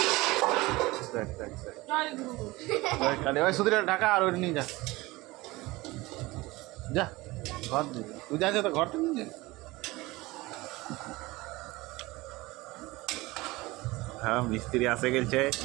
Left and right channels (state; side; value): quieter; left; 20.9 dB